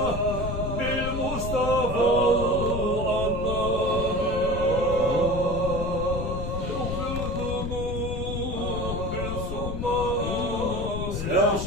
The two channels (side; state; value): left; noise; rumble, 4 dB below the sound